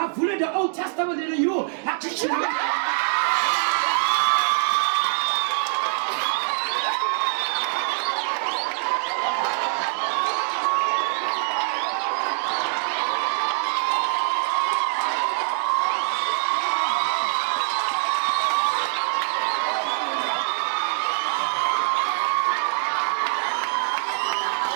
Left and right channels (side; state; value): left; silent; digital silence